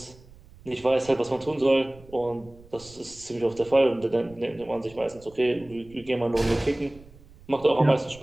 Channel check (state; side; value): noise; right; rumble, 23 dB below the sound